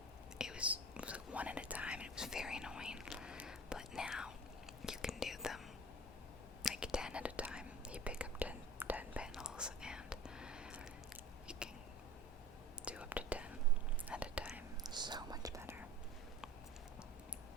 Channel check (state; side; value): normal; both; correlation 0.38